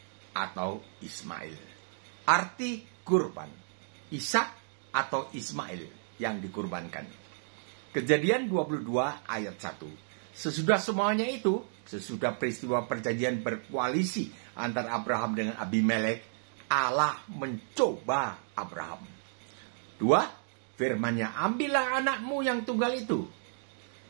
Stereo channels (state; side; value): silent; left; digital silence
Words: atau Ismail. Arti kurban, Ishak atau Ismail yang dikurbankan. Kejadian 22 ayat 1. Sesudah semuanya itu, sesudah peristiwa perjanjian berkoalisi antara Abraham dengan Abimelek, Allah mencoba Abraham. 2. Firman-Nya, ambillah anakmu yang tunggal itu,